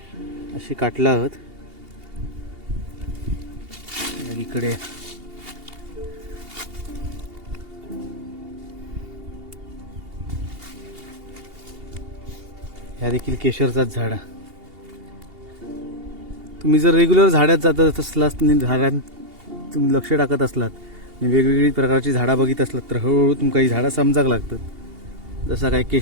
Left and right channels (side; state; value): left; late; 2.8 ms